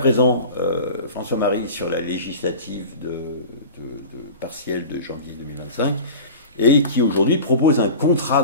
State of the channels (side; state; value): both; inverted; correlation -0.35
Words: François-Marie, sur la législative partielle de janvier 2025, et qui aujourd'hui propose un contrat